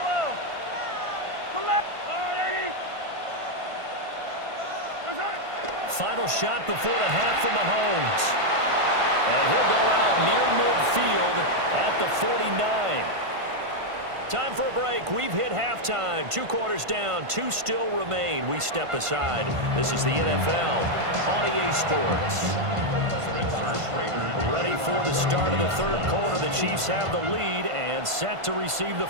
Collect. Final shot before the half from Mahomes. And he'll go out near midfield at the 49. Time for a break. We've hit halftime. 2 quarters down. 2 still remain. We step aside. This is the NFL on EA Sports. Ready for the start of the 3rd quarter. The Chiefs have the lead and set to receive the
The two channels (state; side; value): late; left; 1.5 ms